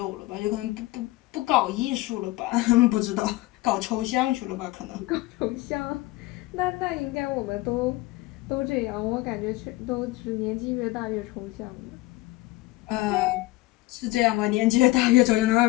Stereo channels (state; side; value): quieter; right; 19.6 dB